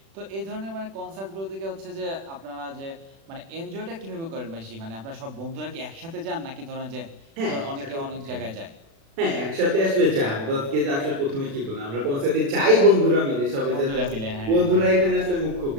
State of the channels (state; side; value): late; left; 36 ms